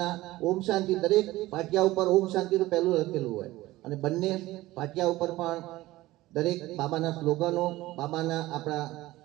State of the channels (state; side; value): quieter; left; 17.6 dB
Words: ઓમ શાંતિ, દરેક પાટિયા ઉપર ઓમ શાંતિનું પહેલું લખેલું હોય અને બંને પાટિયા ઉપર પણ દરેક બાબાના સ્લોગનો, બાબાના આપણા